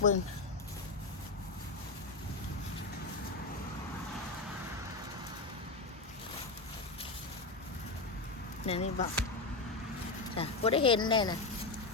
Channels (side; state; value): right; quieter; 3.5 dB